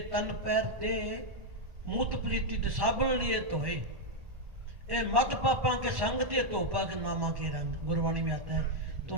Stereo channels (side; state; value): left; late; 1.1 ms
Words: तन पैर दे मूत प्रीति तो साबुन लिए धोए, ए मत पापा के संग ते धोपा के नामा के रंग, गुरबाणी में आता है। तो